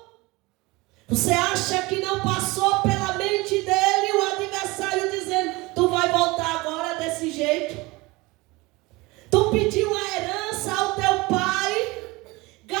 você acha que não passou pela mente dele o adversário dizendo: tu vai voltar agora desse jeito? Tu pediu a herança ao teu pai,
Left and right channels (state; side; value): quieter; left; 22.8 dB